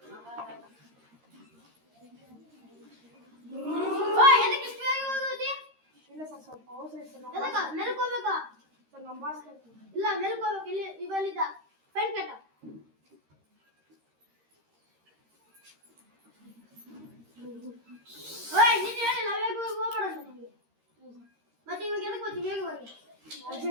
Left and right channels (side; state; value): left; late; 13 ms